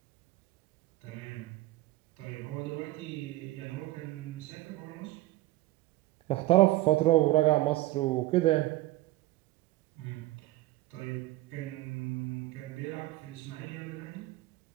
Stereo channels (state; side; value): quieter; left; 17.5 dB